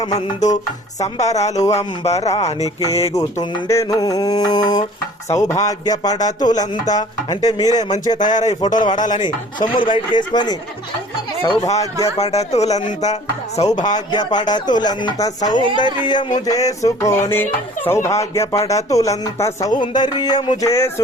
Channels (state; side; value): normal; both; correlation 0.49